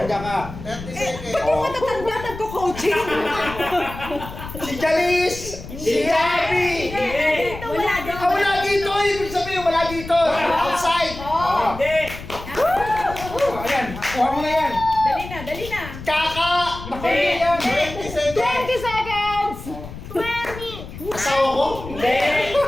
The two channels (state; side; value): noise; left; rumble, 12 dB below the sound